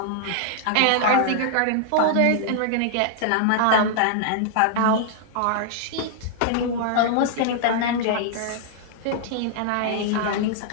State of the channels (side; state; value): both; different; correlation -0.01